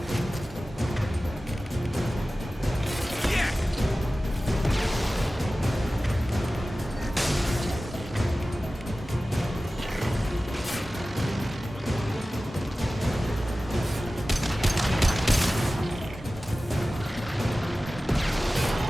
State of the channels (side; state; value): both; normal; correlation 0.96